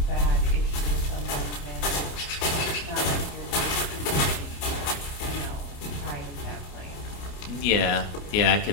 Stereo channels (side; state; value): right; late; 28 ms